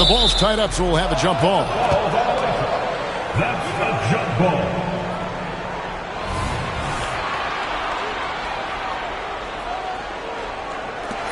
ball's tied up, so we'll have a jump ball. That's the jump ball.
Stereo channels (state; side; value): identical; both; correlation 1.00